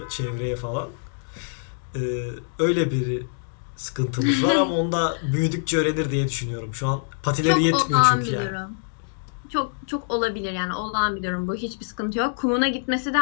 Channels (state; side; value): silent; right; digital silence